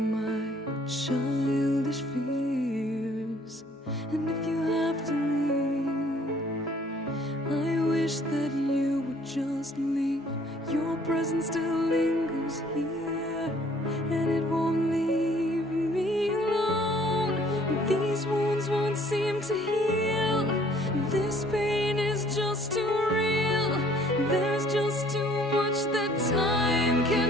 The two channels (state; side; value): normal; both; correlation 0.58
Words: childish fears. And if you have to leave, I wish that you would just leave. Your presence still lingers here, and it won't leave me alone. These wounds won't seem to heal. This pain is just too real. There's just too much that time